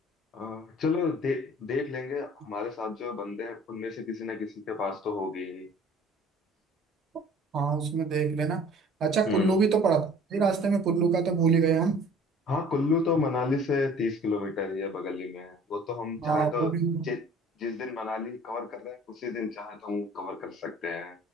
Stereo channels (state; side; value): normal; both; correlation 0.49